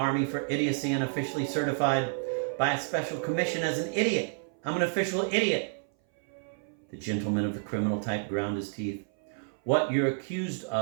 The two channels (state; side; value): silent; left; 58 dB below the other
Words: for idiocy and officially certified by a special commission as an idiot. I'm an official idiot." The gentleman of the criminal type ground his teeth. "What you're accused